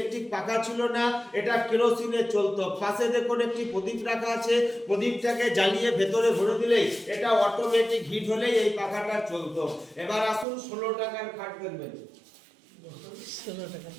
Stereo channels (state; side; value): drops out; left; at 10.5 s